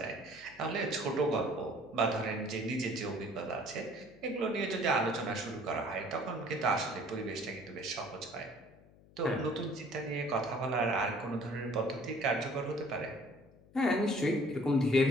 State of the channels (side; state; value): left; noise; hum, 25 dB below the sound